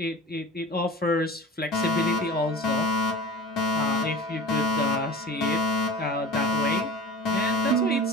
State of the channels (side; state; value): both; normal; correlation 0.37